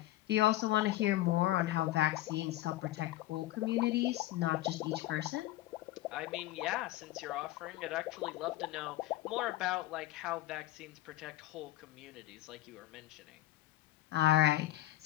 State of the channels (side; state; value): right; quieter; 15.9 dB